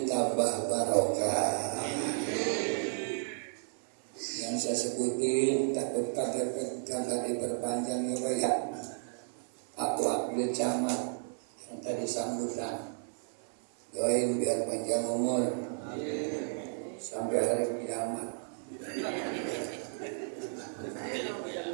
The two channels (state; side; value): silent; left; 56 dB below the other